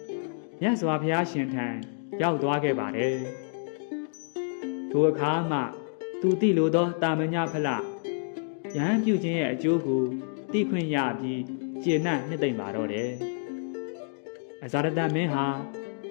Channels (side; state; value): right; silent; digital silence